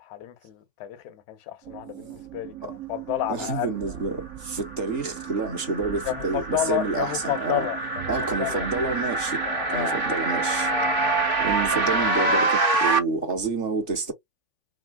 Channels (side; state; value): right; late; 3.5 ms